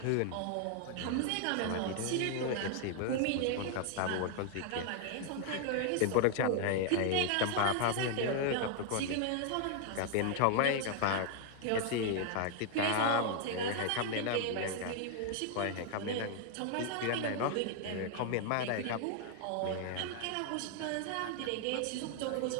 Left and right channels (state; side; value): different; both; correlation 0.00